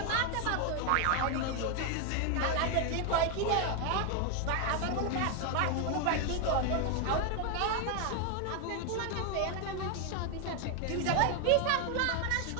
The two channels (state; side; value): different; both; correlation 0.01